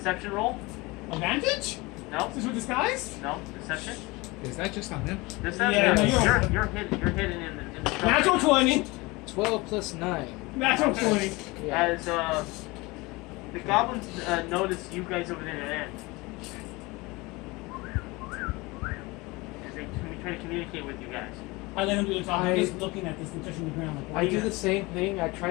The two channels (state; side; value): quieter; right; 23.5 dB